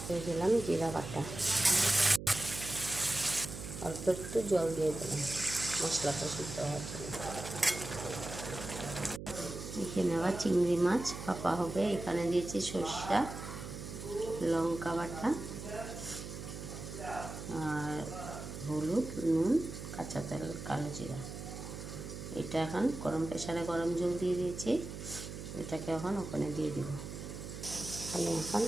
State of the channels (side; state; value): right; noise; hum, 9 dB below the sound